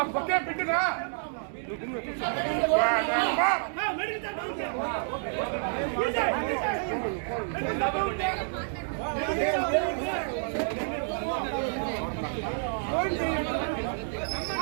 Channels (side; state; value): left; silent; digital silence